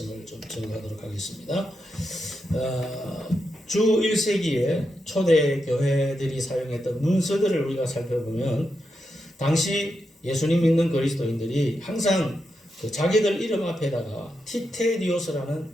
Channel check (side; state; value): both; normal; correlation 0.85